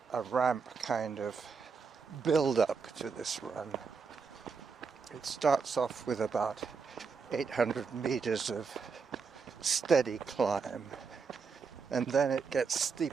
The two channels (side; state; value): left; quieter; 5.3 dB